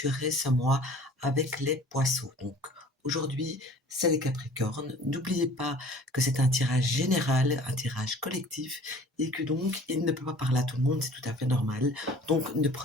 ce mois avec les Poissons. Donc aujourd'hui, c'est les Capricornes. N'oubliez pas que c'est un tirage général, un tirage collectif, et que donc il ne peut pas parler à tout le monde, c'est tout à fait normal. Donc ne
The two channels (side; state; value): both; normal; correlation 0.48